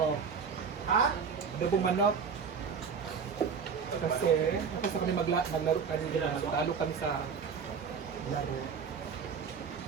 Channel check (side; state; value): left; quieter; 6.2 dB